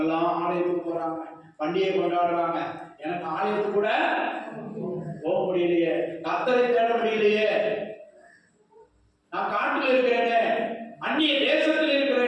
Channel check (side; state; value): both; identical; correlation 1.00